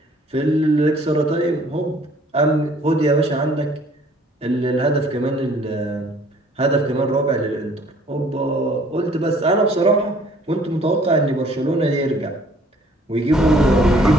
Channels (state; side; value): normal; both; correlation 0.57